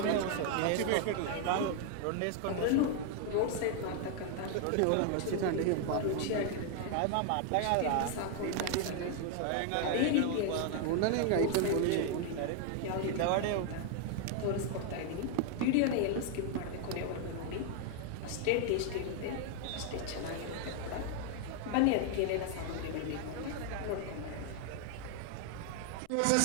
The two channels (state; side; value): different; both; correlation 0.00